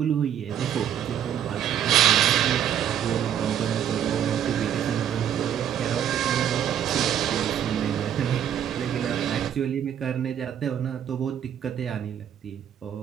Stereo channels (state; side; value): quieter; left; 9.6 dB